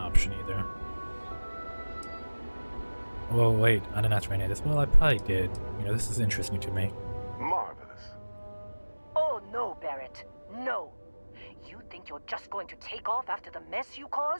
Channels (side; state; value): both; inverted; correlation -1.00